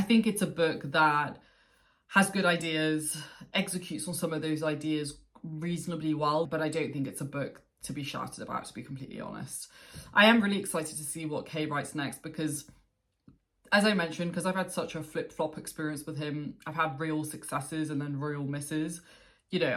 think it's a book that has good ideas, executes on some of those ideas reasonably well, but I don't think it's a book to be shouted about, to be completely honest. I am really excited to see what Kay writes next because, as I mentioned, because I've had such a flip-flop experience with him, I've had real successes and then real misses. You know,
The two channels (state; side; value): identical; both; correlation 1.00